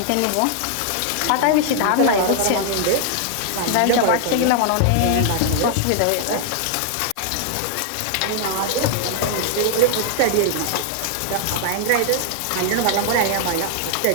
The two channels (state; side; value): different; both; correlation 0.00